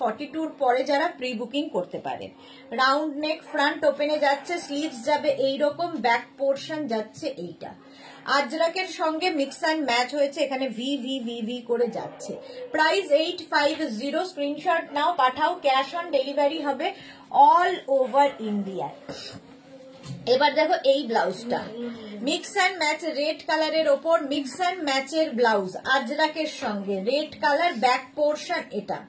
42 পরে যারা প্রি বুকিং করতে পারেন। রাউন্ড নেক, ফ্রন্ট ওপেনে যাচ্ছে, স্লিভস যাবে এইরকম, ব্যাক পোর্শন যাচ্ছে এইটা। আজরাকের সঙ্গে মিক্স অ্যান্ড ম্যাচ হয়েছে, এখানে ভি ভি ভি ভি করে যাচ্ছে। প্রাইস 850, স্ক্রিনশট নাও, পাঠাও, ক্যাশ অন ডেলিভারি হবে অল ওভার ইন্ডিয়া। এবার দেখো এই ব্লাউজটা মিক্স অ্যান্ড ম্যাচ, রেড কালারের ওপর মিক্স অ্যান্ড ম্যাচের ব্লাউজ, আজরাকের সঙ্গে রেড কালার, ব্যাক পোর্শন এটা।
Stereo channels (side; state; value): both; identical; correlation 1.00